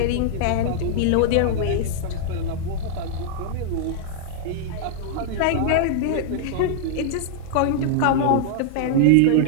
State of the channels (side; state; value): both; different; correlation -0.01